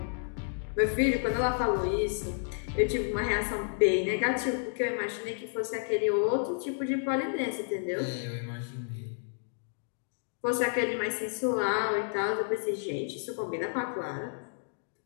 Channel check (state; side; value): silent; right; digital silence